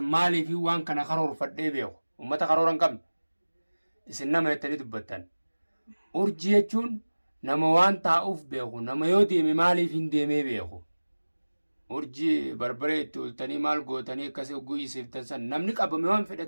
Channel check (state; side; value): inverted; both; correlation -1.00